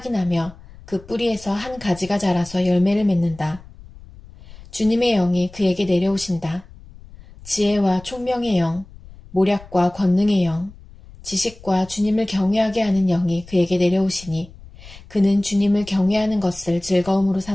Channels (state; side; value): noise; left; rumble, 20 dB below the sound